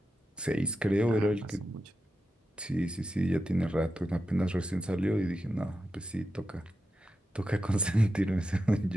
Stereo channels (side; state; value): both; normal; correlation 0.89